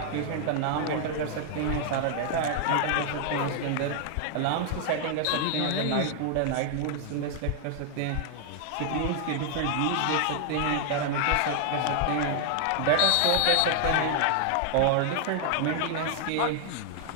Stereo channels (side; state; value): both; different; correlation 0.00